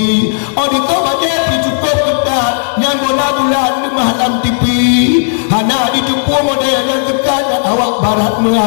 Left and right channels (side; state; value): right; silent; digital silence